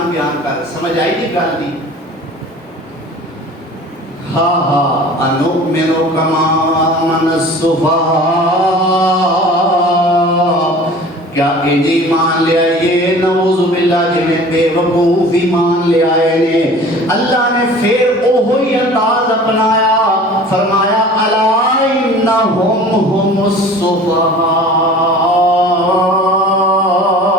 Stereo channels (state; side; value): normal; both; correlation 0.43